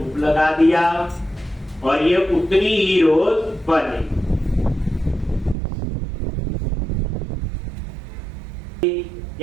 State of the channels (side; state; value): left; drops out; at 5.6 s